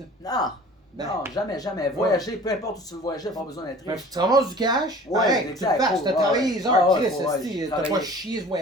Non, Ben. non, jamais. Voyager, peu importe où tu veux voyager, pas besoin d'être Mais riche. tu ramasses du cash, Ouais, pareil, tu le exact, fasses, cool, t'as ouais, travaillé ouais. les heures, Ah ouais, Chris, ouais, esti, j'ai t'as pas travaillé. chié ce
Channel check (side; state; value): both; normal; correlation 0.45